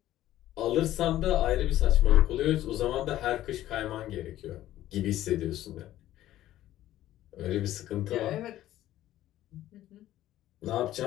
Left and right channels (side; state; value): right; quieter; 13.8 dB